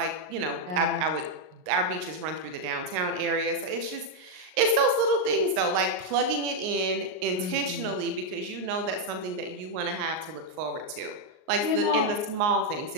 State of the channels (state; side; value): late; left; 38 ms